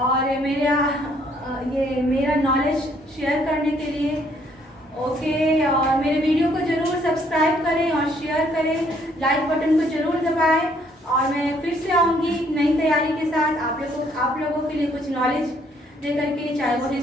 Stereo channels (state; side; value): normal; both; correlation 0.66